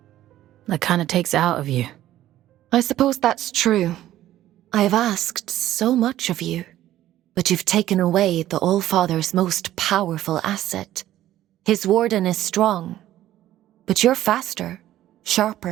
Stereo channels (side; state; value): left; quieter; 13.6 dB